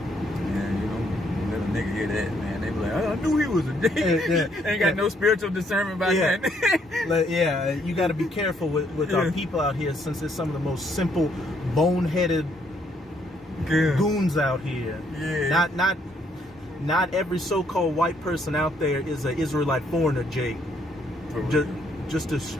you know, let a nigga hear that, man. They be like, I knew he was a Jake. Ain't got no spiritual discernment about that. Yeah, you got to be careful with our people out here, since it's some of the most simple, boneheaded goons out here. Yeah. Not every so-called white person out there is an Israelite foreigner, Jake. Just to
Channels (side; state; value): both; normal; correlation 0.70